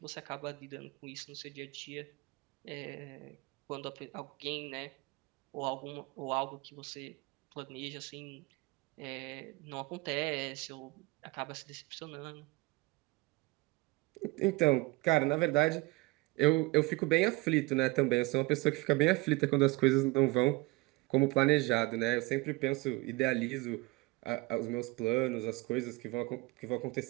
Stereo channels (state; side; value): quieter; left; 23.1 dB